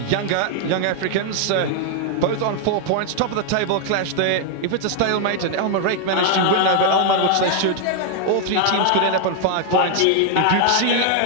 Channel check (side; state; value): both; different; correlation 0.00